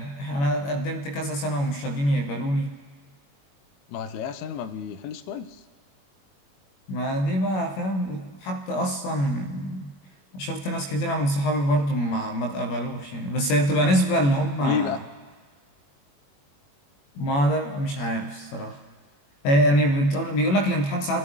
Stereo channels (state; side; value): late; right; 21 ms